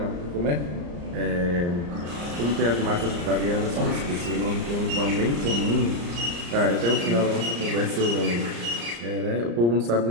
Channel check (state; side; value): late; left; 34 ms